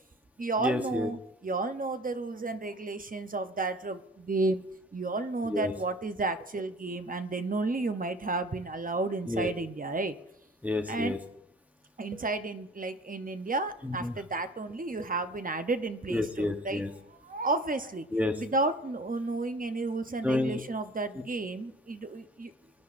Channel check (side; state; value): both; normal; correlation 0.47